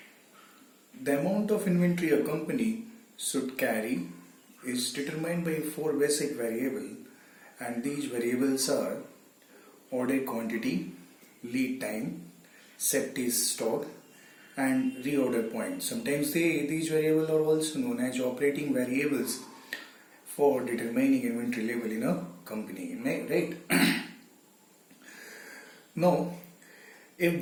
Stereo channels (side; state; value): both; identical; correlation 1.00